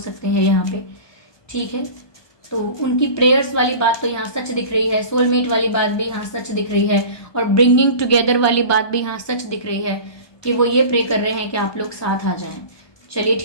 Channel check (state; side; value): late; right; 1.2 ms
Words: हैं यहाँ पे। ठीक है, तो उनकी प्रेयर्स वाली बात तो यहाँ सच दिख रही है, सोलमेट वाली बात भी यहाँ सच दिख रही है, और ब्रिंगिंग टुगेदर वाली बात भी यहाँ सच दिख रही है कि वो ये प्रे कर रहे हैं कि आप लोग साथ आ जाएं। चलिए